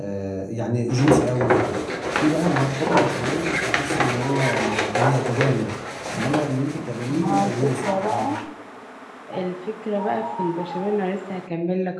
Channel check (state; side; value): identical; both; correlation 1.00